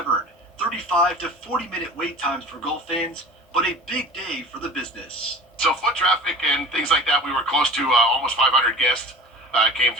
35 to 40-minute wait times for golf fans, but a big day for the business. So foot traffic and things like that, we were close to almost 500 guests came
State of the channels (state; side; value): normal; both; correlation 0.38